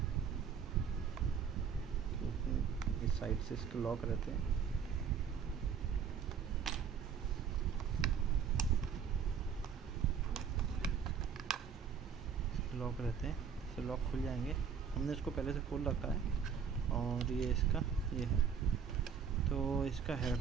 क्योंकि इस साइड से इसके लॉक रहते हैं, इससे लॉक खुल जाएंगे। हमने इसको पहले से खोल रखा है और ये है। तो इसका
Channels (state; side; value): quieter; left; 6.9 dB